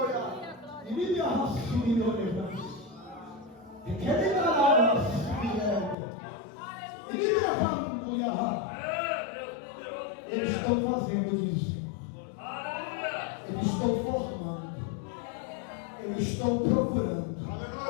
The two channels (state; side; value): drops out; right; at 6.0 s